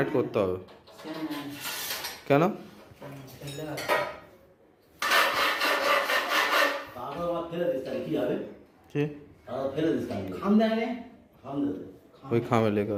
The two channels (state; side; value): identical; both; correlation 1.00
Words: করতে হবে। কেন? ওই খামে লেখা